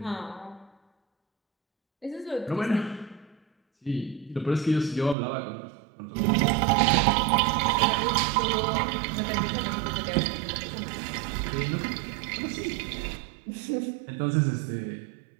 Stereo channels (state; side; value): drops out; left; at 5.2 s